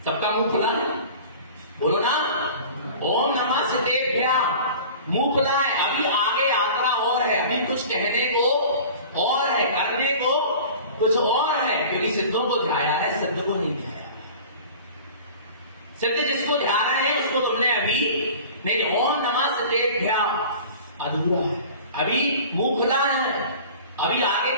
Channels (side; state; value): both; inverted; correlation -0.41